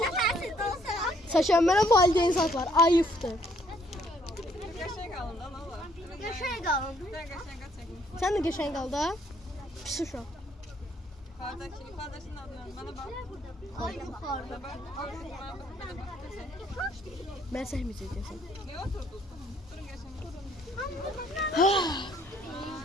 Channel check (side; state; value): both; normal; correlation 0.66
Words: Saçan mənə valideyn saklar. Ayıptır. Yaşaya kalın. Sen de geçen kaldı ha? Pis uşaq. Kardeşinin adını bana bak. Mən səhməyəcəksən. Ne oturdun? Durun geçen.